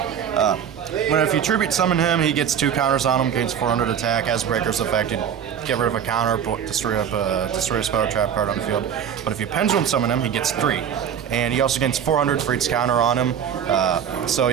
If you tribute summon him, he gets 2 counters on him, gains 400 attack, has Breaker's effect, get rid of a counter, destroy a spell or trap card on the field. But if you pendulum summon him, he gets 3. And he also gains 400 for each counter on him. So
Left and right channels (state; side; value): quieter; left; 8.5 dB